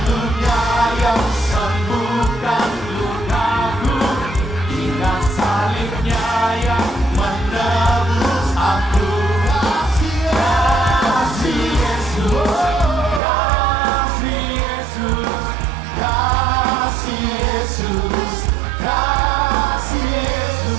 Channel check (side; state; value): left; drops out; at 13.2 s